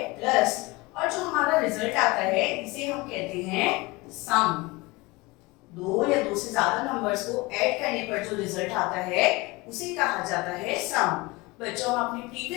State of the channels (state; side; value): quieter; right; 23.1 dB